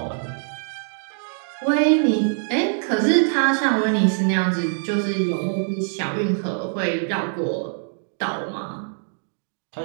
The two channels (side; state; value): left; silent; digital silence